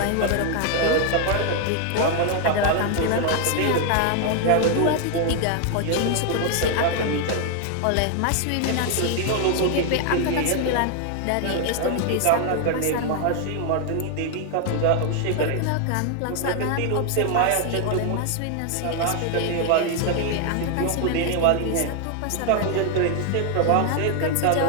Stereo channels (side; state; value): both; different; correlation 0.00